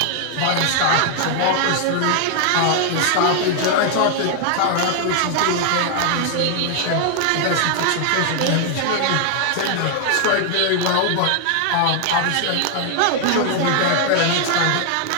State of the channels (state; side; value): different; both; correlation 0.00